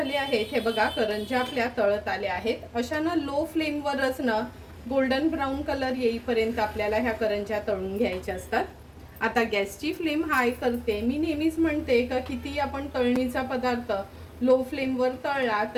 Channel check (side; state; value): both; identical; correlation 1.00